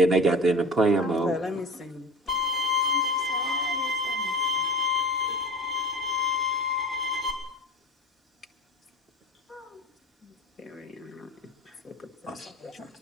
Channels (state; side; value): normal; both; correlation 0.36